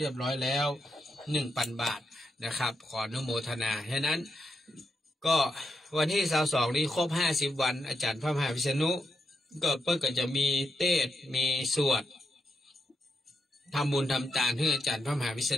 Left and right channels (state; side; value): normal; both; correlation 0.84